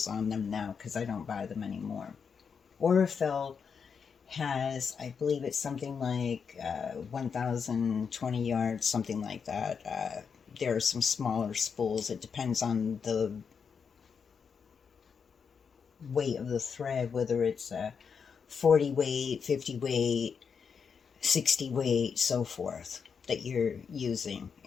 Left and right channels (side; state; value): right; quieter; 6.3 dB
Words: on them now because I don't buy them anymore. Orville has, I believe it's something like 1,020 yards, something like that. There are some smaller spools. It depends on the weight of the thread, whether it's a 40 weight, 50 weight, 60 weight, so forth, that you're using